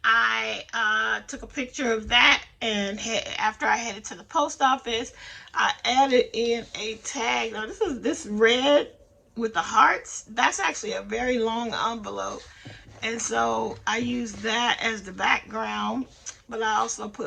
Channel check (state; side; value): identical; both; correlation 1.00